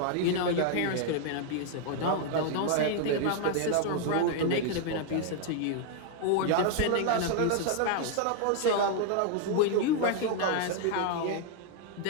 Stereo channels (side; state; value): both; different; correlation 0.00